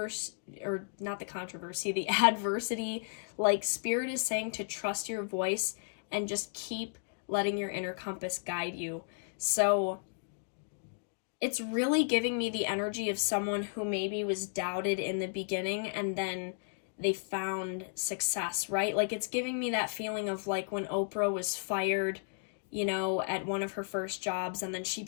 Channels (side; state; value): right; silent; digital silence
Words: or not the controversy, the adversity. Like, Spirit is saying to trust your voice and just keep letting your inner compass guide you. So it's really giving me the energy of someone who maybe was doubted in the beginning and then they found success, right? Like, it's giving me that feeling of like when Oprah was fired, at one of her first jobs, and then she